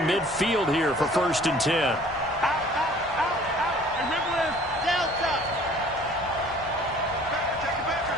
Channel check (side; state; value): both; normal; correlation 0.52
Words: here for 1st and 10.